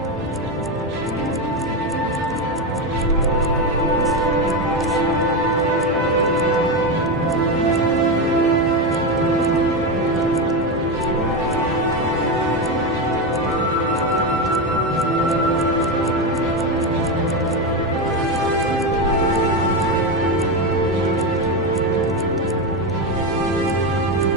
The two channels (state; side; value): normal; both; correlation 0.13